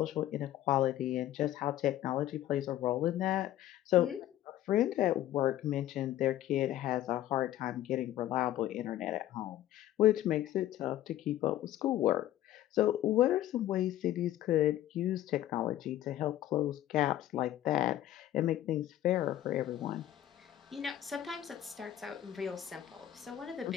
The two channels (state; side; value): quieter; right; 13.1 dB